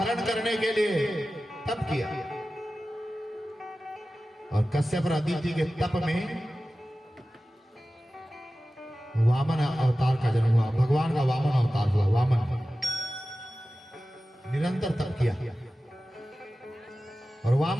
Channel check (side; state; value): both; normal; correlation 0.95